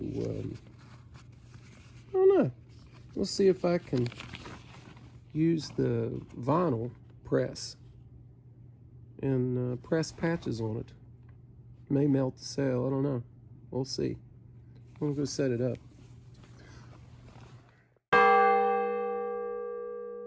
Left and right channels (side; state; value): both; identical; correlation 1.00